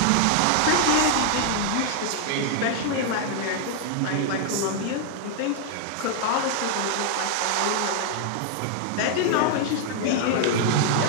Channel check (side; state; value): both; different; correlation 0.00